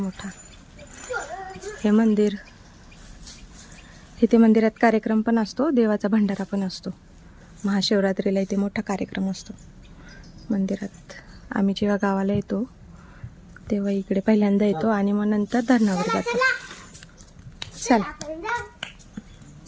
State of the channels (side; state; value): both; identical; correlation 1.00